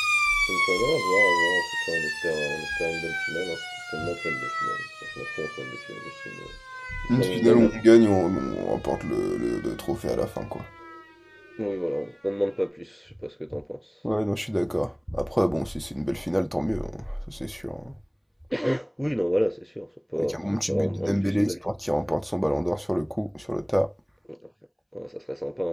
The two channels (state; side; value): identical; both; correlation 1.00